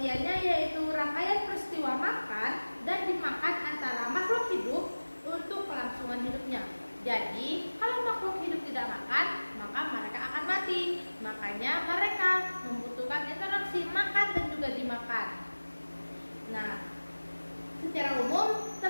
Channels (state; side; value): inverted; both; correlation -1.00